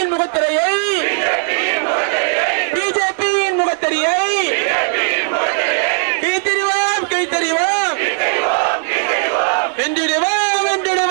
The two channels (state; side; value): quieter; left; 39.9 dB